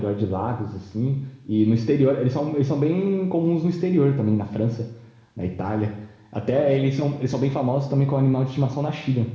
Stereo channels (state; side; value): identical; both; correlation 1.00